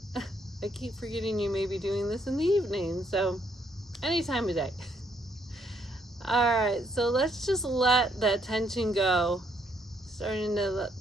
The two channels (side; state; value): both; normal; correlation 0.71